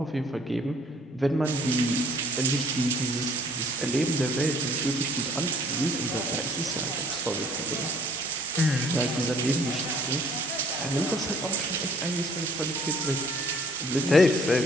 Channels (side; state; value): both; normal; correlation 0.57